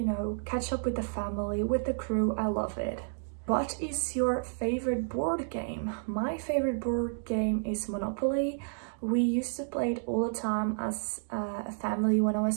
catch up with the family, with the crew. I love it. What is your favorite board game? My favorite board game is Monopoly. We used to play it all the time as a family when I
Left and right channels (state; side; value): silent; left; digital silence